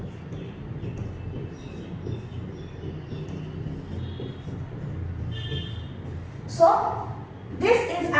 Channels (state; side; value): identical; both; correlation 1.00